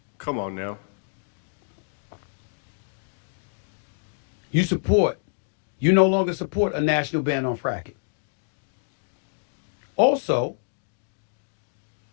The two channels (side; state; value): right; silent; digital silence